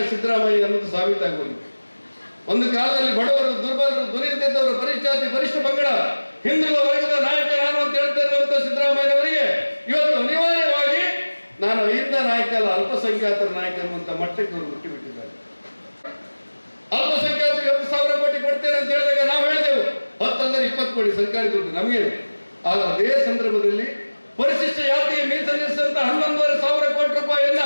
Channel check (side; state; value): both; inverted; correlation -1.00